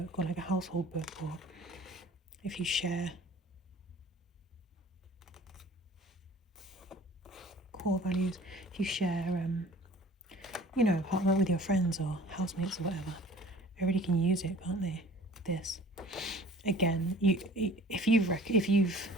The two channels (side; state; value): both; normal; correlation 0.47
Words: or like a household book, or if you share core values, if you share you know, apartment with your friends or housemates or whatever, everybody can use it, can't they? This, again, if you've